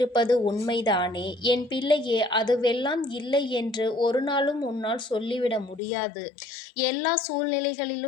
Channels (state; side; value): drops out; right; at 5.8 s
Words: உண்மைதானே? என் பிள்ளையே, அதுவெல்லாம் இல்லை என்று ஒரு நாளும் உன்னால் சொல்லிவிட முடியாது. எல்லா